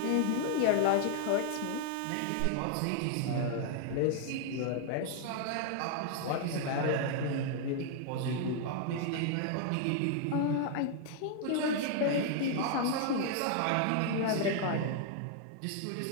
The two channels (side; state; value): both; different; correlation 0.00